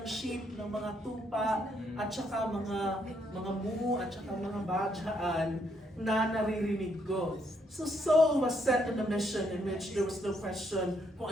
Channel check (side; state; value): both; normal; correlation 0.74